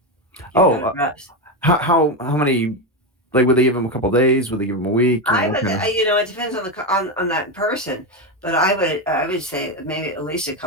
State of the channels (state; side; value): normal; both; correlation 0.11